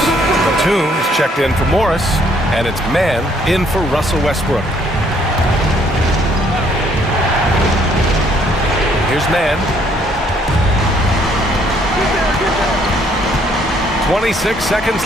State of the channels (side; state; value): both; normal; correlation 0.65